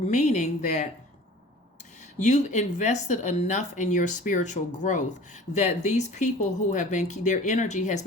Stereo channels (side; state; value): both; normal; correlation 0.44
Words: that you've invested enough in your spiritual growth that these people who have been, their energy has